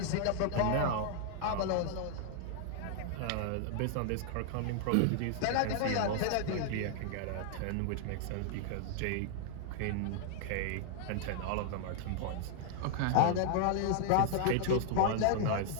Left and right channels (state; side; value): different; both; correlation -0.01